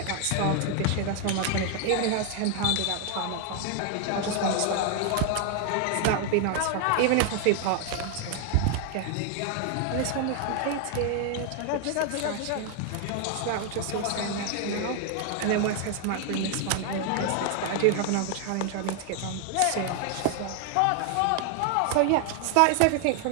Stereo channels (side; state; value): both; different; correlation 0.00